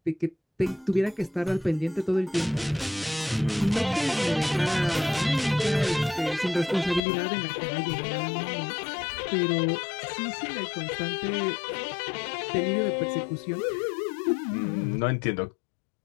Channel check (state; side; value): drops out; right; at 7.0 s